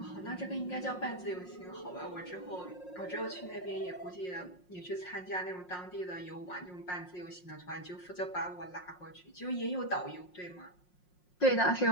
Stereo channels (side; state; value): right; late; 5.6 ms